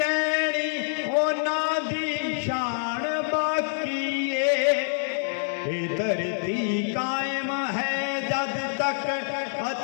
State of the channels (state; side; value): silent; right; digital silence